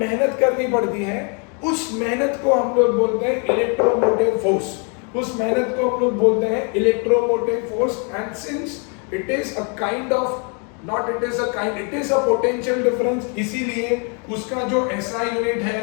करनी पड़ती है। उस मेहनत को हम लोग बोलते हैं इलेक्ट्रोमोटिव फोर्स, उस मेहनत को हम लोग बोलते हैं electromotive force. And since it is a kind of not it is a kind, it is a potential difference, इसीलिए उसका जो एसआई यूनिट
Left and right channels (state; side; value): quieter; right; 37.0 dB